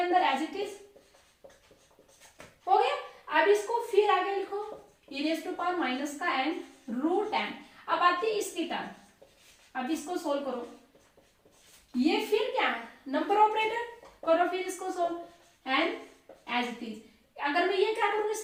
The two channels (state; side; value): identical; both; correlation 1.00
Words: एज इट इज हो गया। अब इसको फिर आगे लिखो, e⁻⁻ का n रूट n। अब आती है इसकी टर्न, अब इसको सोल्व करो, ये फिर क्या है, नंबर ऑपरेटर करो, फिर इसको solve, n as it is. अगर मैं ये क्या करूंगी,